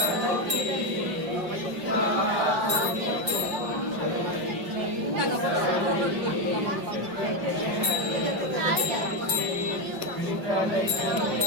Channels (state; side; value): late; left; 4.9 ms